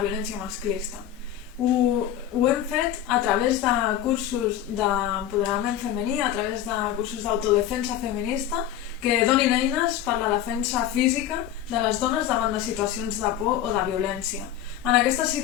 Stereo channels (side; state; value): right; quieter; 11.0 dB